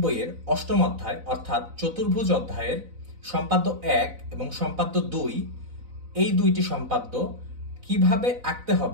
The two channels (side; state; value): left; late; 4.0 ms